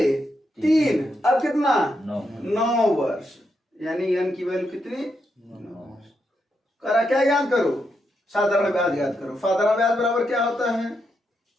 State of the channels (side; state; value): both; normal; correlation 0.82